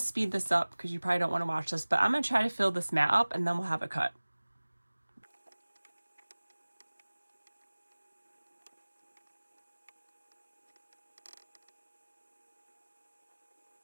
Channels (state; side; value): inverted; both; correlation -1.00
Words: this up because you probably don't want to watch this, but I'm going to try to fill this mat up and then we'll have it cut.